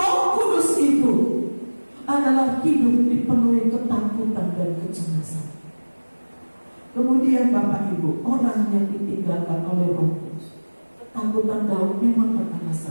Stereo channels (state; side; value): inverted; both; correlation -1.00